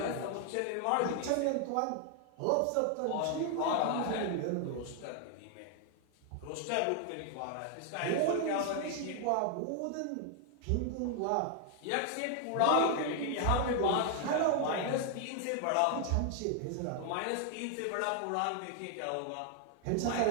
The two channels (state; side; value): different; both; correlation 0.00